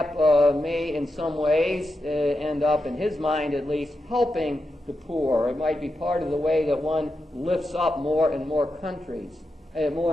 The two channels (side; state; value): both; normal; correlation 0.88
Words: may in some ways end up, in his mind at least, helping the poor. It might be part of the way that one lifts up more and more countries, more